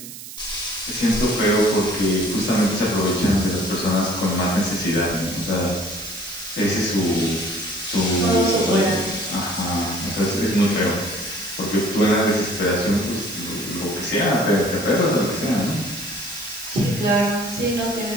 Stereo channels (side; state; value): right; noise; hiss, 13 dB below the sound